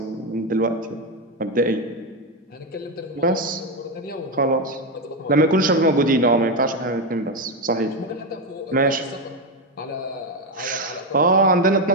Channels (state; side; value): normal; both; correlation 0.10